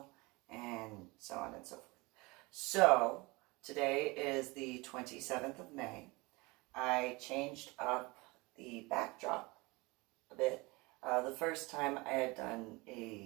and so on and so forth. So, today is the 27th of May. I changed up the backdrop a bit. The first time I had done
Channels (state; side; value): quieter; left; 24.6 dB